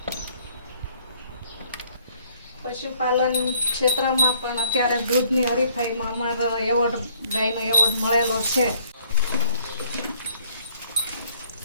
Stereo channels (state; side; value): inverted; both; correlation -0.64